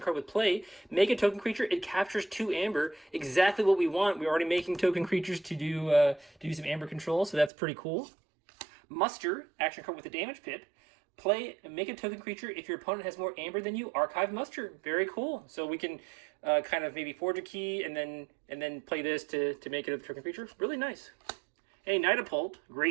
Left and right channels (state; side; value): drops out; left; at 7.5 s